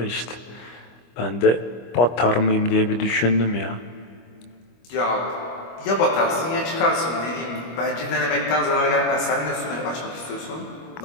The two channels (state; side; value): late; right; 25 ms